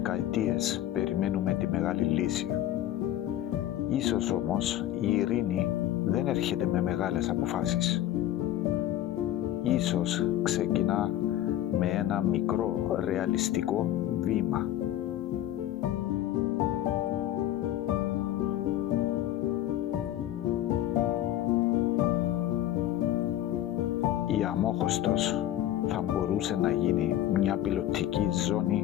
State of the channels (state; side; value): quieter; right; 12.9 dB